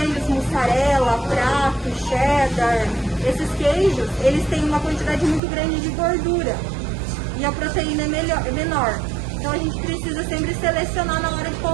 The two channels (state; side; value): drops out; left; at 5.4 s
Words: mussarela, prato, cheddar, esses queijos, eles têm uma quantidade muito grande de gordura e a proteína é menor. Então a gente precisa sempre selecionar na hora de